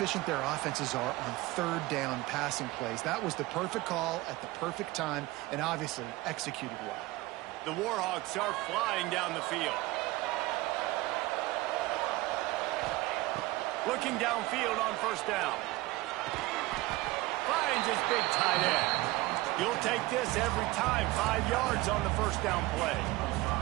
their offenses are on 3rd down passing plays. That was the perfect call at the perfect time and obviously executed well. The Warhawks are flying down the field. Looking downfield on 1st down. Finds his big tight end. You'll take this every time. 5 yards on the 1st down play.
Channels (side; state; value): left; quieter; 19.5 dB